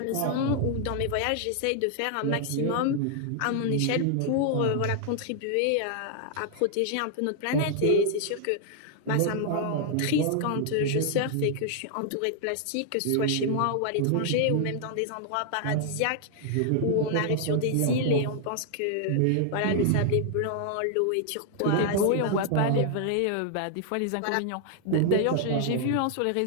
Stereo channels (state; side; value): different; both; correlation 0.00